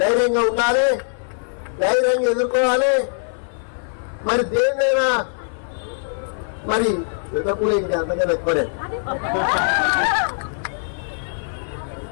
ఉండాలి, ధైర్యంగా ఎదుర్కోవాలి. మరి దేన్నైనా మరి ఎప్పుడు ఇంకా అంతగా ఎక్కువనే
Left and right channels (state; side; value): silent; right; 58 dB below the other